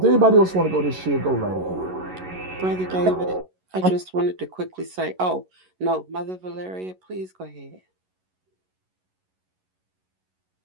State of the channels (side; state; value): left; late; 11 ms